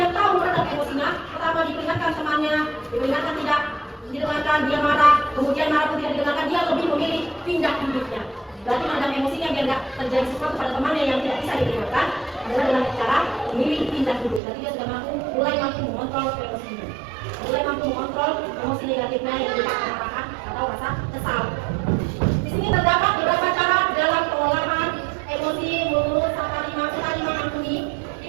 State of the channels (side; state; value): left; drops out; at 14.4 s